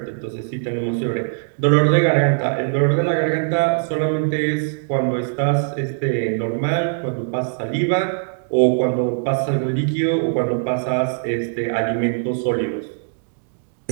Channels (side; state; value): left; silent; digital silence